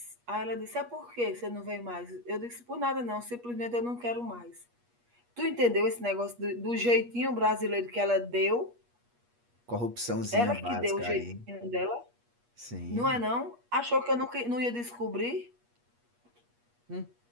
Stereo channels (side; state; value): left; late; 8.4 ms